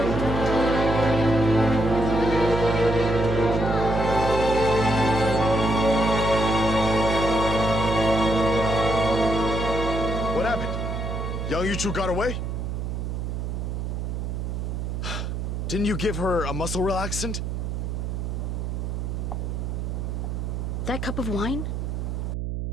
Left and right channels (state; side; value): noise; right; hum, 3 dB below the sound